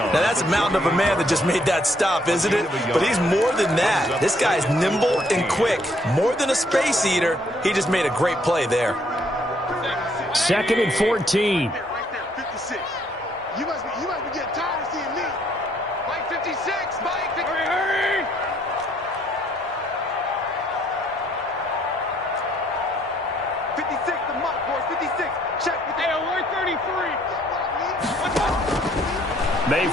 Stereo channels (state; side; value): normal; both; correlation 0.67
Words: that's a mountain of a man that just made that stop, isn't it? But he's more than that. This guy's nimble and quick. More than a space eater, he just made a great play there. 2nd and 14. Right there, 56. You must be getting tired of seeing me. Mike, 56. Mike, 56. Hurry. 56 to Mike, boys. 56. Check with the alert 33.